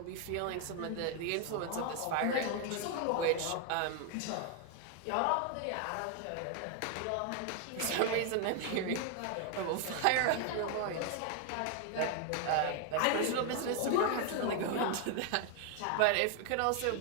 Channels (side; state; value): both; different; correlation 0.00